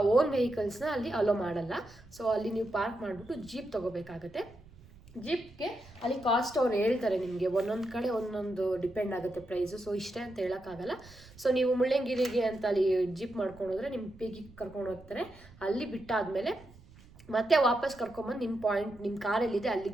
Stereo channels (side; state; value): right; noise; rumble, 22 dB below the sound